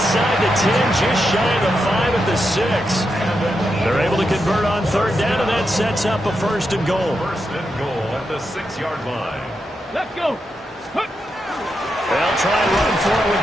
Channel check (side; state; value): both; normal; correlation 0.85